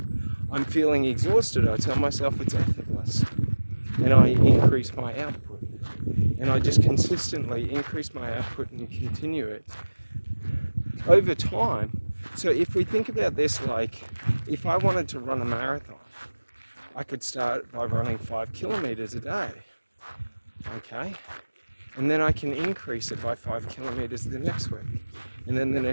I'm feeling exhausted, I tell myself it's effortless, and I increase my output. And I just consistently increase my output and continue it over time. So if we think about this, like, if I wanted to run a marathon, I could start by running 5 kilometers a day, okay? And then I can increase it by 5 kilometers the next week, and then the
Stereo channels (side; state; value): both; inverted; correlation -1.00